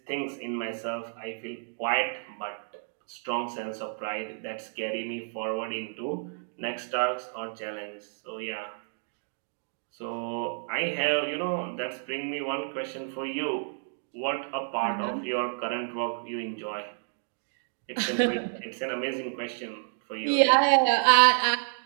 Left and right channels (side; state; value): left; silent; digital silence